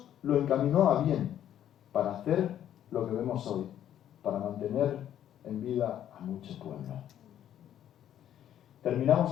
lo encaminó a bien, para hacer lo que vemos hoy, para mantener en vida a mucho pueblo. Terminamos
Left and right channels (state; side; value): quieter; right; 10.8 dB